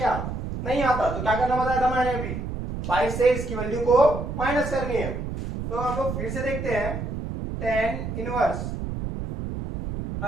नहीं आता। तो क्या करना बताया था मैंने अभी, पाई से इसकी वैल्यू को माइनस करनी है। तो हम लोग फिर से देखते हैं, टेन इनवर्स,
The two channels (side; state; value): right; noise; rumble, 5 dB below the sound